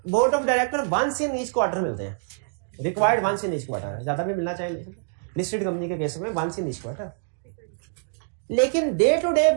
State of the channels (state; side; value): silent; left; digital silence